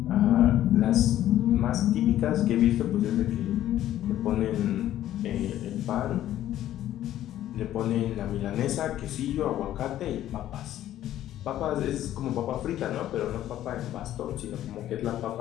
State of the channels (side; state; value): right; quieter; 12.7 dB